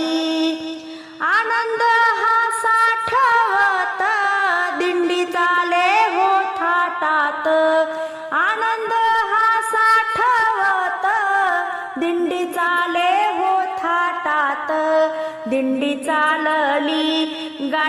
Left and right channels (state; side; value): identical; both; correlation 1.00